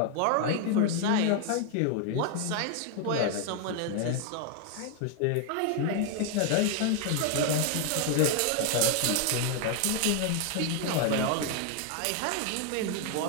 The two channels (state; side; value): different; both; correlation 0.00